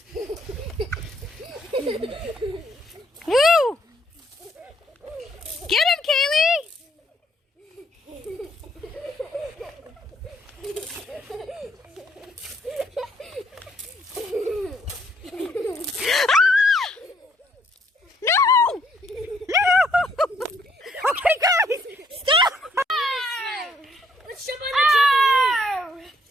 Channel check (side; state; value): both; normal; correlation 0.67